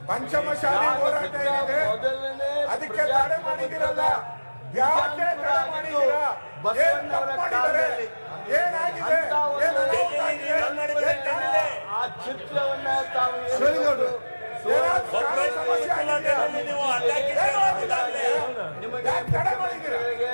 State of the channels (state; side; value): inverted; both; correlation -1.00